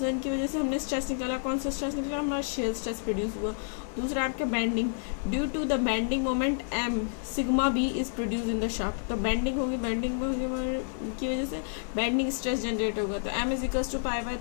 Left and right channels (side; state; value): right; silent; digital silence